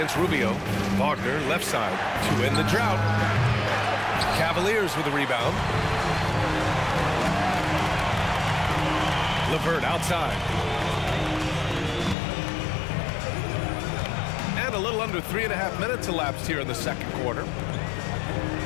Rubio. Wagner left side to end the drought. Cavaliers with a rebound. LeVert outside. And a little under 3.5 minutes elapsed here in the second quarter.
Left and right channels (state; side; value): drops out; right; at 12.2 s